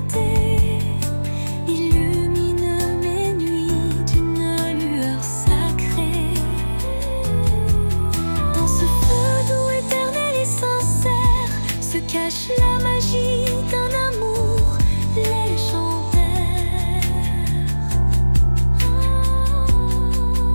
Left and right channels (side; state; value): both; inverted; correlation -1.00